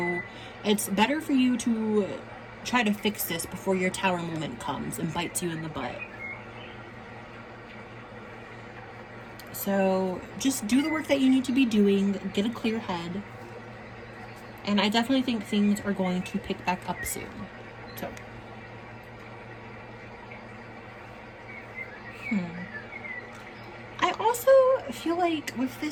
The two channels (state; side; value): identical; both; correlation 1.00